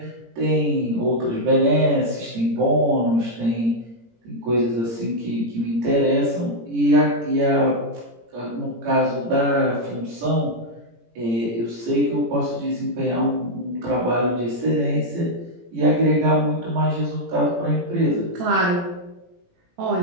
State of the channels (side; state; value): left; late; 17 ms